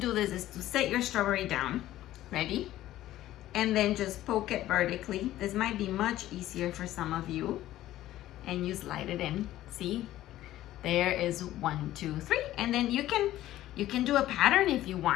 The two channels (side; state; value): right; quieter; 14.3 dB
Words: this is to set your strawberry down. Ready? And then just poke it vertically. This might be much easier for some of you. And you slide it in. See? There is 1, 2, 3. And then you can do a pattern if you